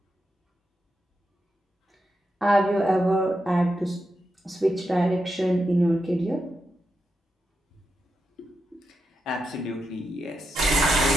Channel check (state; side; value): normal; both; correlation 0.86